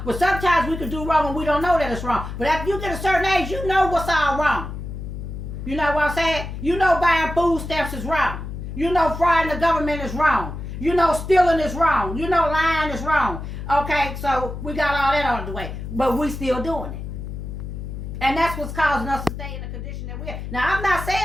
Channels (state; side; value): noise; left; hum, 8 dB below the sound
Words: but sometimes we can do wrong and we don't know that it's wrong. But after you get a certain age, you know what's all wrong. You know what I'm saying? You know buying food stamps is wrong. You know frauding the government is wrong. You know stealing is wrong. You know lying is wrong. Okay, so we got all that out of the way. But we still doing it. And that's what's causing us to stay in the condition that we're in. Now, I'm not